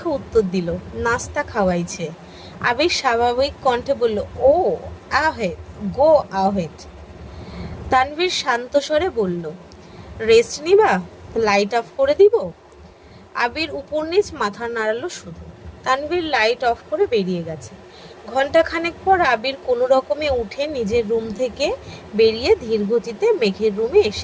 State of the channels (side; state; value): both; identical; correlation 1.00